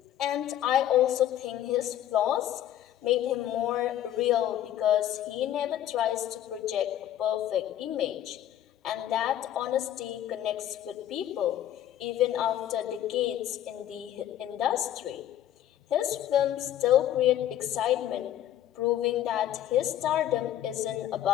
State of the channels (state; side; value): quieter; right; 11.8 dB